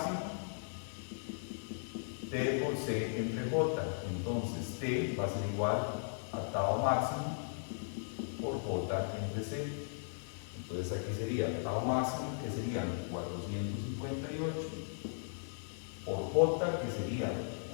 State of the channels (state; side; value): silent; right; 53 dB below the other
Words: T por C entre J. Entonces T va a ser igual a tau máximo por J entre C. Entonces aquí sería tau máximo, que serían 458, por J, que sería